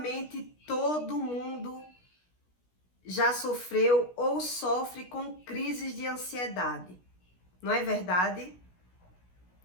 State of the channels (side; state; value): right; late; 16 ms